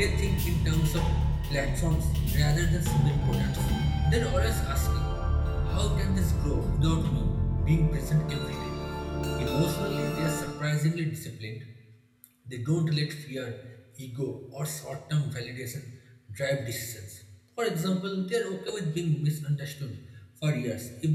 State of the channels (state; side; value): identical; both; correlation 1.00